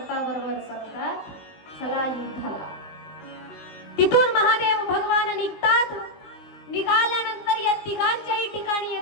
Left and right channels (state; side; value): late; right; 19 ms